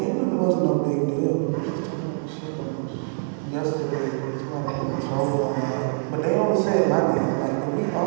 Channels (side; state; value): left; silent; digital silence